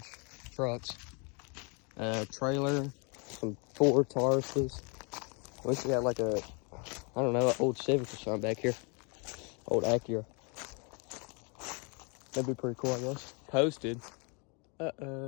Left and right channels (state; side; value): quieter; right; 33.7 dB